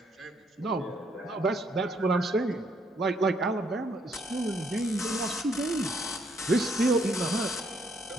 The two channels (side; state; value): both; normal; correlation 0.70